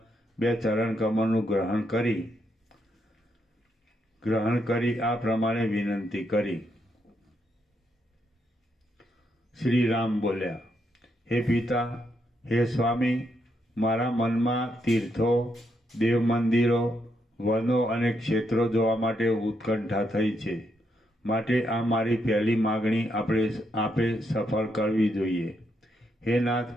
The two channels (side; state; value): both; normal; correlation 0.79